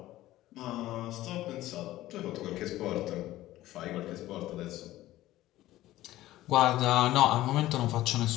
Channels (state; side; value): quieter; right; 15.6 dB